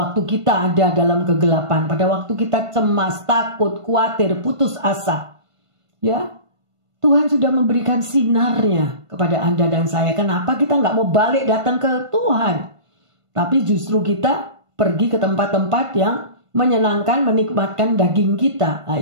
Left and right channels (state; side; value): late; left; 1.5 ms